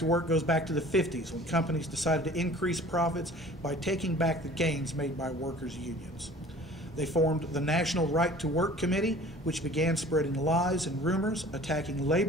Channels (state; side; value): normal; both; correlation 0.47